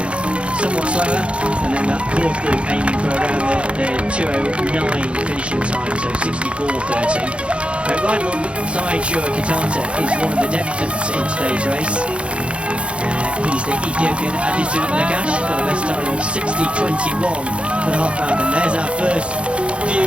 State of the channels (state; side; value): late; left; 0.059 ms